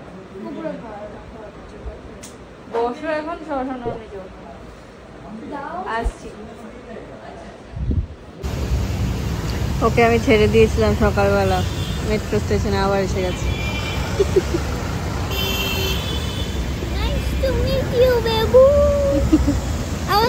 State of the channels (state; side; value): identical; both; correlation 1.00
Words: উপরে খাওয়া হচ্ছে। বসো এখন শশান আমি যাবো। দাও। আসছি। ওকে আমি ছেড়ে দিয়েছিলাম সকালবেলা মেট্রো স্টেশনে, আবার এসে গেছে। Nice to meet you, babu. আবার